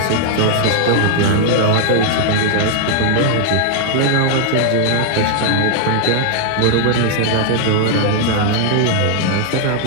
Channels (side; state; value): both; different; correlation 0.00